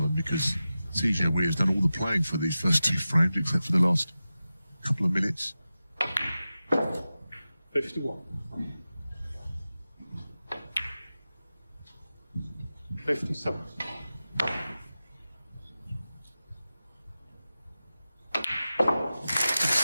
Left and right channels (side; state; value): both; inverted; correlation -0.94